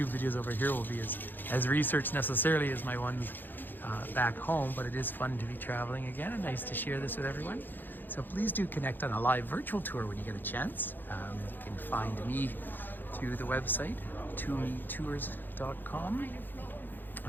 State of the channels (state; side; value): late; right; 0.091 ms